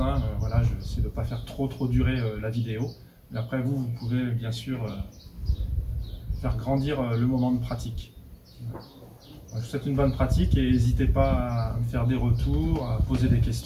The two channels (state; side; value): identical; both; correlation 1.00